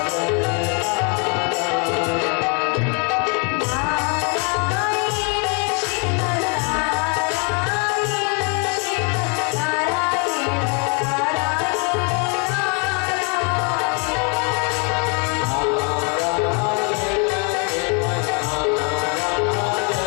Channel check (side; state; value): right; quieter; 35.9 dB